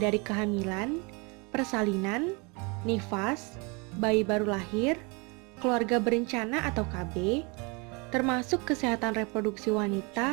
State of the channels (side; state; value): left; quieter; 30.3 dB